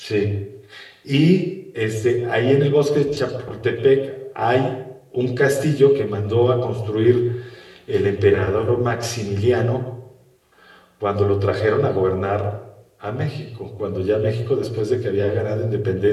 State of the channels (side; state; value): both; identical; correlation 1.00